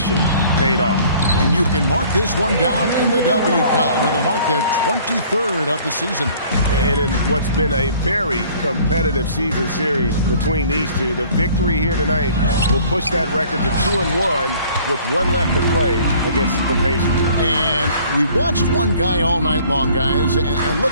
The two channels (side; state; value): both; inverted; correlation -0.54